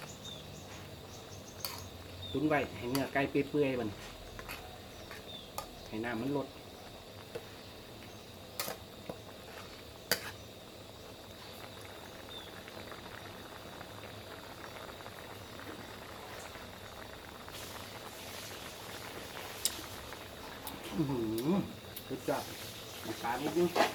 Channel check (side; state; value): both; identical; correlation 1.00